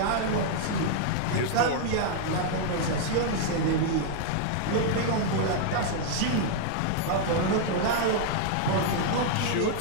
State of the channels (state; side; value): different; both; correlation -0.01